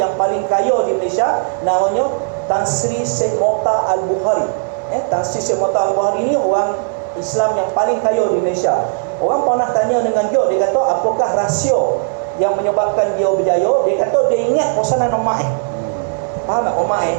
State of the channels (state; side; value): silent; left; digital silence